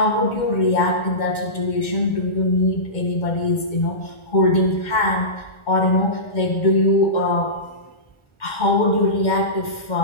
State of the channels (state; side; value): late; right; 2.2 ms